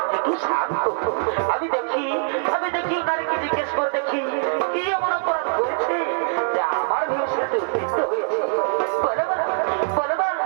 একটু শান্ত হো। আমি দেখি তাদেরকে জিজ্ঞেস করে দেখি কি এমন অপরাধ করেছে যে আমার ভীষণ উত্তেজিত হয়েছে। বলো বলো বলো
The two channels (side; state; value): left; silent; 63 dB below the other